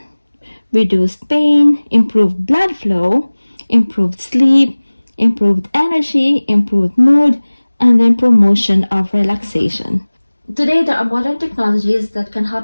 reduced pain, improved blood flow, improved sleep, improved energy, improved mood, and then promotion of relaxation. Today, there are modern technologies that can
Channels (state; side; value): inverted; both; correlation -1.00